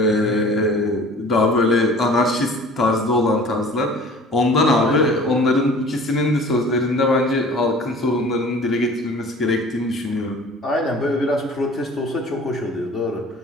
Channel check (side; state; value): both; normal; correlation 0.46